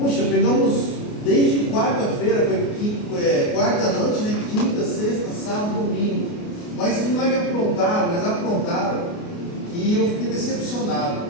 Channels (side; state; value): right; late; 29 ms